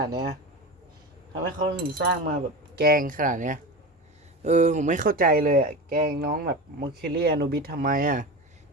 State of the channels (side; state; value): both; normal; correlation 0.26